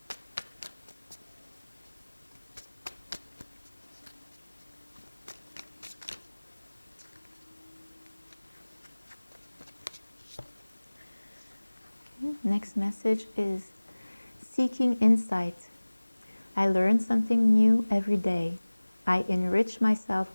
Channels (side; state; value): both; inverted; correlation -1.00